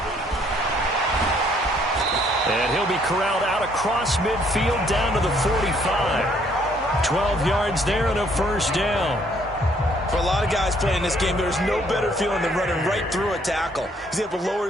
And he'll be corralled out across midfield down to the 45. 12 yards there and a 1st down. For a lot of guys playing this game, there's no better feeling than running right through a tackle. He's able to lower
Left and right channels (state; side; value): normal; both; correlation 0.65